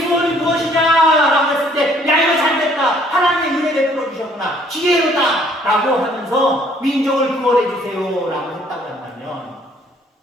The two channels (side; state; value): both; normal; correlation 0.61